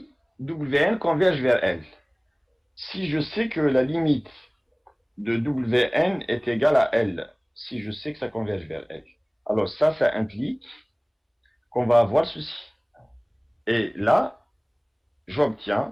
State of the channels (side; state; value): both; identical; correlation 1.00